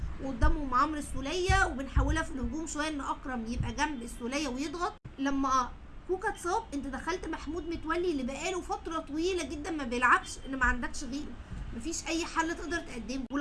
وقدامهم عمرو السوليه، وبنحاولها في الهجوم شويه ان اكرم يبقى جنب السوليه ويضغط. لما كوكا اتصاب انت دخلت محمود متولي اللي بقاله فتره طويله جدا ما بيلعبش، ان ما عندكش غيره، مفيش اي حل تقدر تقدمه.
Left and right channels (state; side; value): identical; both; correlation 1.00